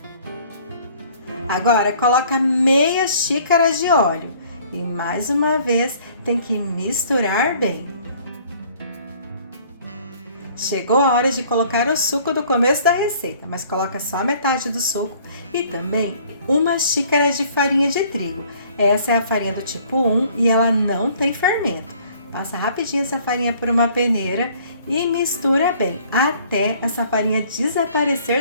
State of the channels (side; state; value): both; inverted; correlation -0.56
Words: Agora coloca meia xícara de óleo e mais uma vez tem que misturar bem. Chegou a hora de colocar o suco do começo da receita, mas coloca só metade do suco e também uma xícara de farinha de trigo. Essa é a farinha do tipo 1 e ela não tem fermento. Passa rapidinho essa farinha por uma peneira e mistura bem até essa farinha